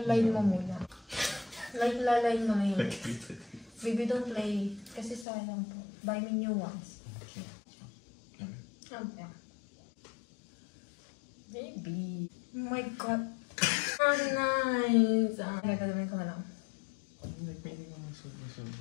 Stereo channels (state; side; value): drops out; right; at 5.2 s